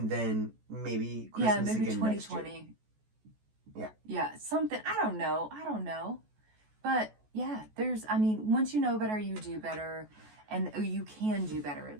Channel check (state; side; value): late; left; 14 ms